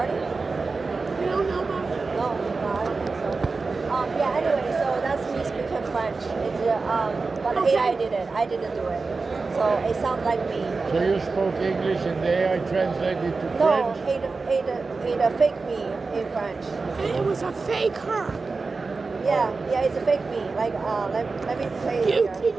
You don't know about it? No, I don't think so. Yeah, anyway, so that's me speaking French. It's but the Okay. AI did it. I didn't do it. So it sounds like me. So you spoke English and the AI translated to No, French? it fake me in French. And it was a fake her. Yeah, it's a fake me. Like, let me play it You, here.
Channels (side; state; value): left; quieter; 4.1 dB